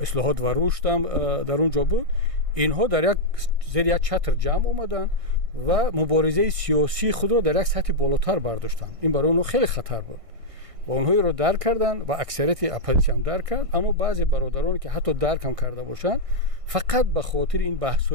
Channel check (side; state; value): left; late; 1.6 ms